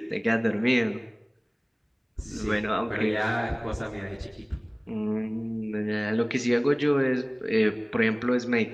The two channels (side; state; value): both; identical; correlation 1.00